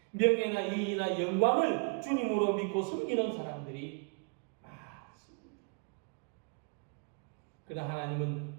명예나 이익이나 영광을 주님으로 믿고 섬기는 사람들이 많습니다. 그러나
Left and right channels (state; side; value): quieter; left; 36.7 dB